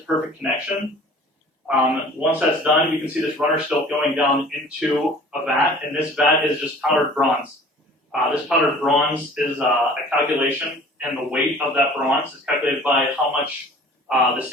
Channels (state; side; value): normal; both; correlation 0.48